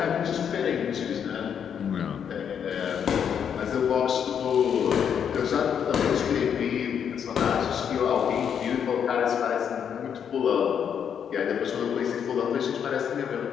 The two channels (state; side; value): quieter; right; 8.0 dB